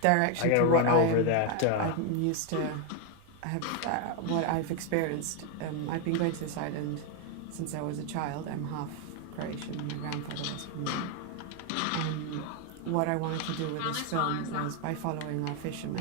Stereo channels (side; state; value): both; different; correlation 0.01